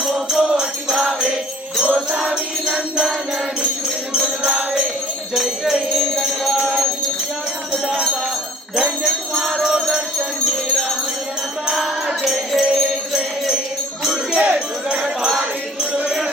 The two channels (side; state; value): both; normal; correlation 0.52